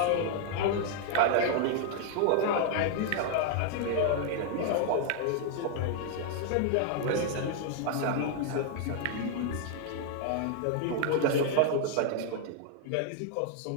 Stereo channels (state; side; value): different; both; correlation 0.00